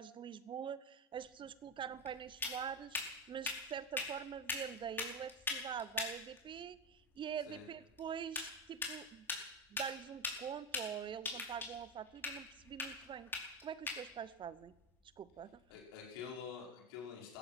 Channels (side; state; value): both; normal; correlation 0.13